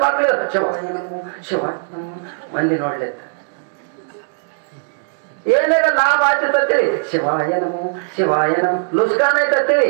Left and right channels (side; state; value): left; silent; digital silence